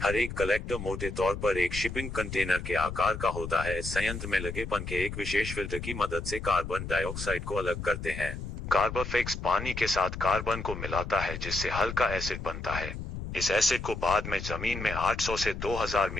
हर एक कलेक्टर मोटे तौर पर एक शिपिंग कंटेनर के आकार का होता है। इस संयंत्र में लगे पंखे एक विशेष फिल्टर की मदद से कार्बन डाइऑक्साइड को अलग करते हैं। कार्बोफिक्स पानी के साथ कार्बन को मिलाता है जिससे हल्का एसिड बनता है। इस एसिड को बाद में जमीन में 800 से 2000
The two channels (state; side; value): noise; left; rumble, 7 dB below the sound